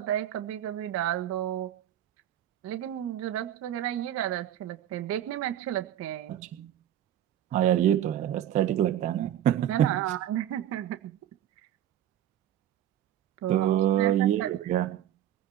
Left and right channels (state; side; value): quieter; left; 11.4 dB